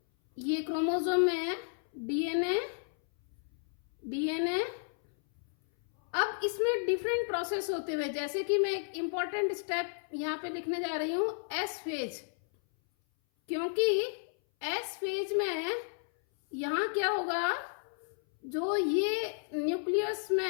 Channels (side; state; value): right; silent; 56 dB below the other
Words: ये क्रोमोसोम में डीएनए अब इसमें डिफरेंट प्रोसेस होते हुए, जैसे कि मैं एक इंपॉर्टेंट स्टेप यहां पे लिखने जा रही हूं, एस फेज। क्योंकि एस फेज में यहां क्या होगा, जो ये न्यूक्लियस